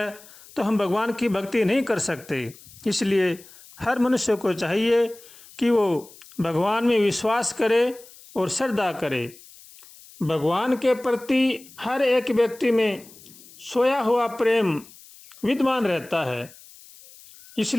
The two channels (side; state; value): left; noise; hiss, 22 dB below the sound